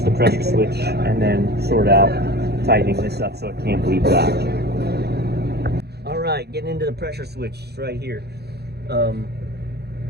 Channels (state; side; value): late; left; 0.48 ms